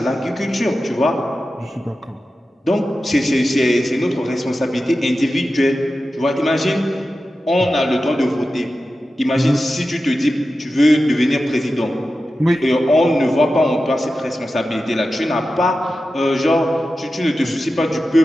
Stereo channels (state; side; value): normal; both; correlation 0.93